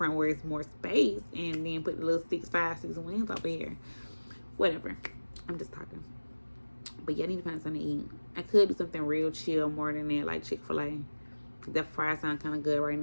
where it's more space, and then put the little 6 wings over here. Whatever. I'm just talking. But yeah, I need to find something to eat. I could do something real chill more than that, like Chick-fil-A. That fries sound kind of good right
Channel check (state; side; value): inverted; both; correlation -1.00